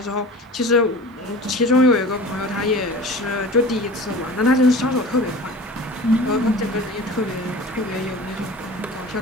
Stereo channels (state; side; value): normal; both; correlation 0.38